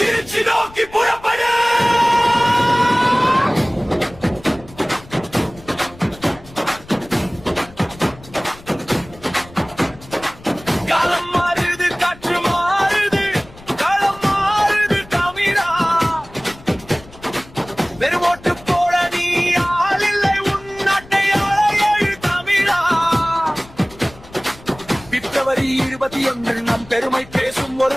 நோக்கி புறப்படு. காலம் மாறுது, காற்று மாறுது, களம் மாறுது தமிழா. வெறும் ஓட்டு போட நீ ஆள் இல்லை, உன் நாட்டை ஆள எழு தமிழா. பிப்ரவரி 21 நம் பெருமை பேசும்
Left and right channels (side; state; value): left; noise; rumble, 21 dB below the sound